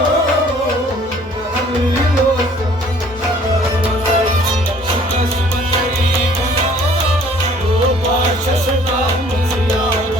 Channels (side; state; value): both; normal; correlation 0.56